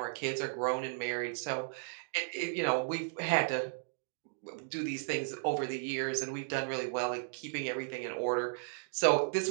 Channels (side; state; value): left; silent; digital silence